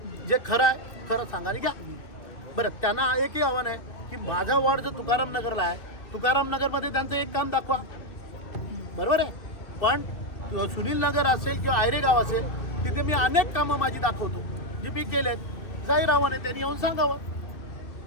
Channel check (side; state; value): right; late; 2.6 ms